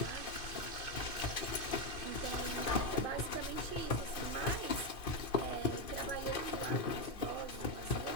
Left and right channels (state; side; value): late; right; 2.5 ms